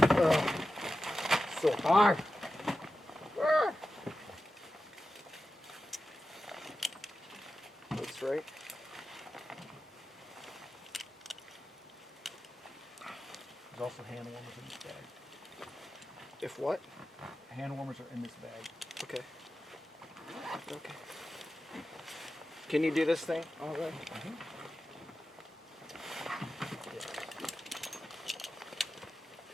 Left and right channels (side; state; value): both; normal; correlation 0.92